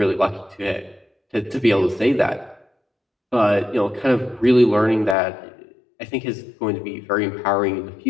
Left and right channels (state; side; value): drops out; right; at 5.2 s